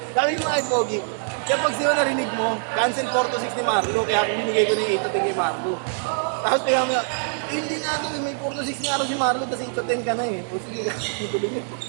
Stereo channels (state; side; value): silent; left; digital silence